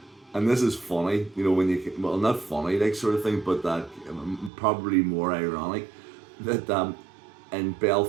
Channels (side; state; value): left; drops out; at 4.5 s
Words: and this is funny, you know, when you, well, not funny, like, sort of thing, but that probably more ironic, that in